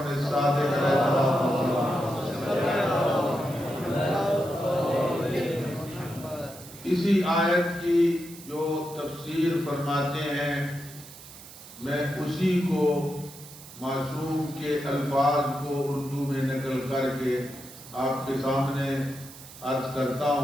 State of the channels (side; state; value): right; noise; hiss, 17 dB below the sound